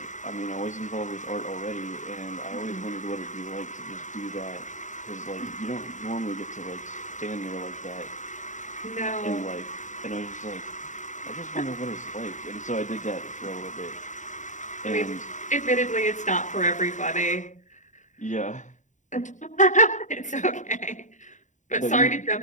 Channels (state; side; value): late; right; 0.36 ms